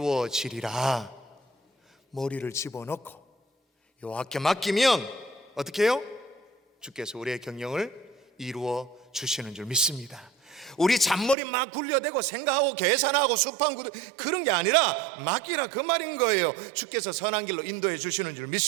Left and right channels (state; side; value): drops out; left; at 11.4 s